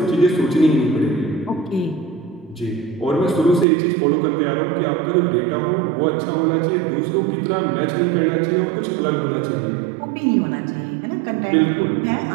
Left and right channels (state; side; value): drops out; left; at 3.7 s